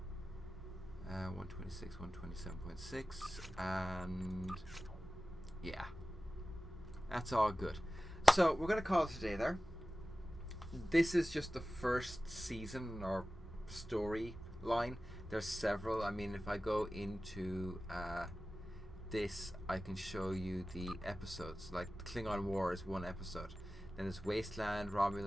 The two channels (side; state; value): both; normal; correlation 0.96